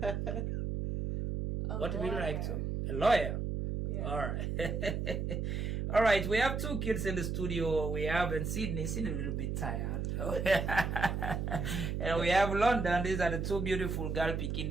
What would you like to? A lawyer? Yeah. All right. All right, we have two kids in the studio. We have in Sydney a little bit tired. And we have London. These are the two beautiful girls picking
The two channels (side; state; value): right; noise; hum, 2 dB below the sound